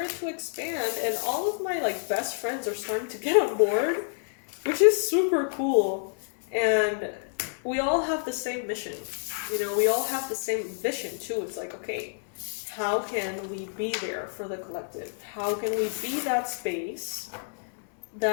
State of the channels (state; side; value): silent; right; digital silence